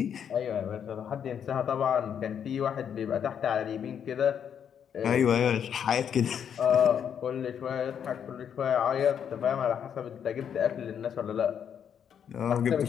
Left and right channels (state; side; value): quieter; right; 8.3 dB